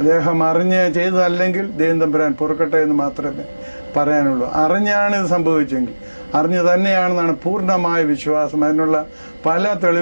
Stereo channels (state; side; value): inverted; both; correlation -1.00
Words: അറിഞ്ഞ് ചെയ്തതല്ലെങ്കിൽ ദൈവം തമ്പുരാൻ പൊറുക്കട്ടെ എന്ന് മാത്രമേ പറയാനുള്ളൂ. അറിഞ്ഞാണ് ഇത് സംഭവിച്ചെങ്കിൽ, അറിഞ്ഞു തന്നെയാണെന്നാണ് പൂർണ്ണമായ വിശ്വാസം. അതിനുള്ള പല